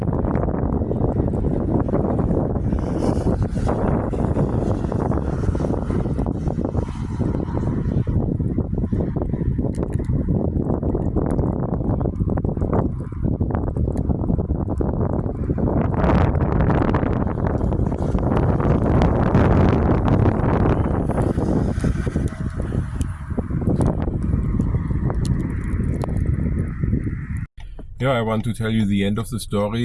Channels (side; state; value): both; identical; correlation 1.00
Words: Yeah, I want to tell you the end of the